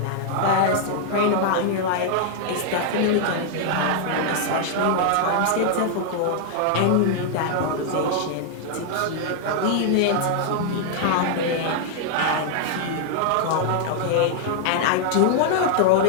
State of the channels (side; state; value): both; different; correlation -0.01